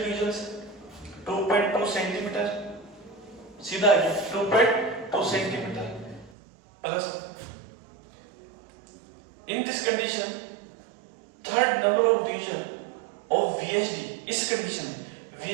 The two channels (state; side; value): drops out; left; at 6.3 s